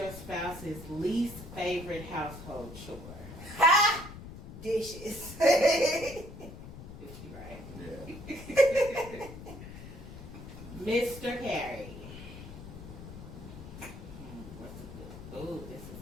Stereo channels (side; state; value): left; noise; rumble, 13 dB below the sound